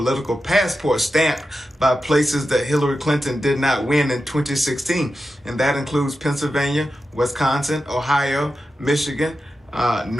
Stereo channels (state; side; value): normal; both; correlation 0.90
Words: passport stamped by places that Hillary Clinton did not win in 2016. And that includes Pennsylvania, Wisconsin, Ohio, Michigan,